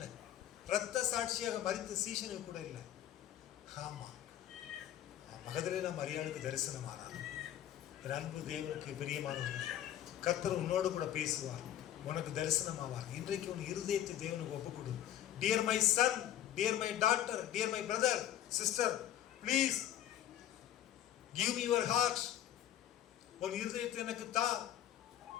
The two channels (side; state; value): right; quieter; 11.7 dB